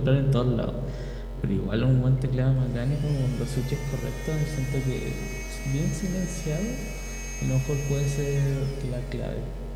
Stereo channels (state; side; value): identical; both; correlation 1.00